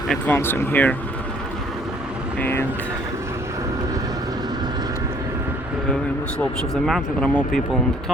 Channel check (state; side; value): normal; both; correlation 0.59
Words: advancing here, and in the slopes of the mountain there are more people on the